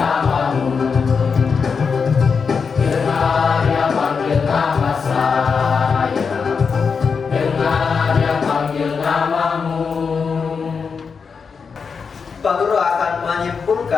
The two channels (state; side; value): quieter; right; 5.6 dB